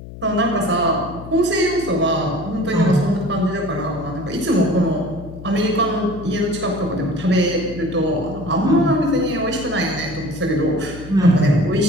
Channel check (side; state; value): left; noise; hum, 14 dB below the sound